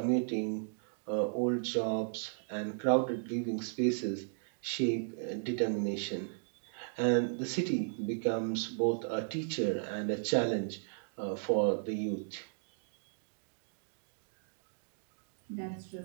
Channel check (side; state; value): left; silent; digital silence